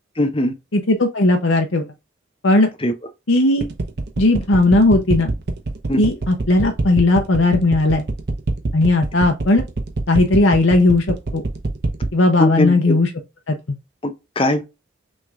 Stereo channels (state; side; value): normal; both; correlation 0.58